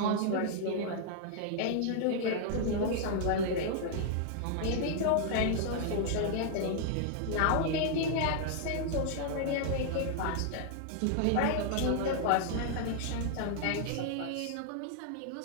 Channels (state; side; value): different; both; correlation -0.01